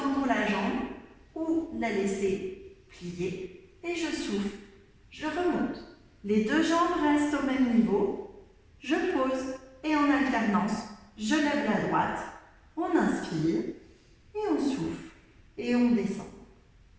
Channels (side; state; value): both; identical; correlation 1.00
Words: la jambe ou la laisser plier. Et je souffle, je remonte. Les deux jambes restent au même niveau. Je pose et en alternance, je lève la droite. On inspire et on souffle et on descend.